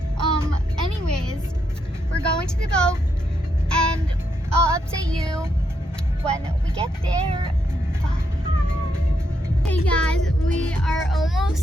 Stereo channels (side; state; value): both; normal; correlation 0.79